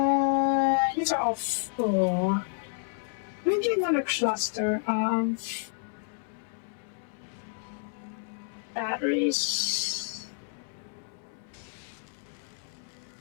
These are all full. Maybe another cluster of batteries.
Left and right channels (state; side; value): silent; right; 58 dB below the other